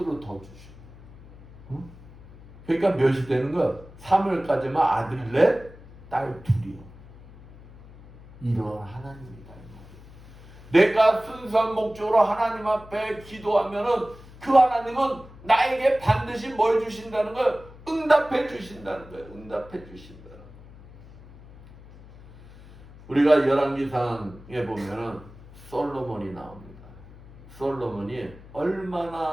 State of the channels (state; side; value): noise; left; hum, 20 dB below the sound